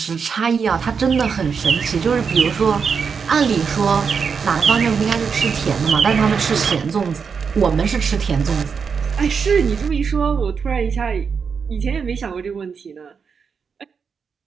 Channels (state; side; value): quieter; left; 6.0 dB